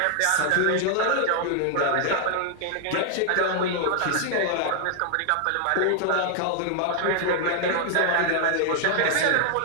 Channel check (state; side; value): different; both; correlation 0.00